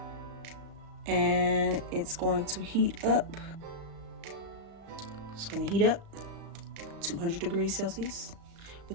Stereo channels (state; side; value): late; left; 36 ms